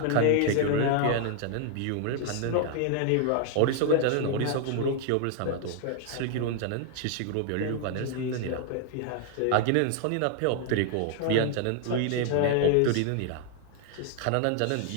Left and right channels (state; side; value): different; both; correlation 0.00